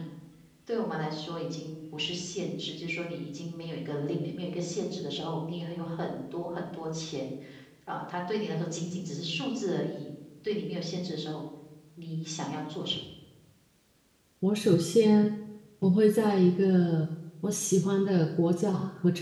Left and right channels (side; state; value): both; identical; correlation 1.00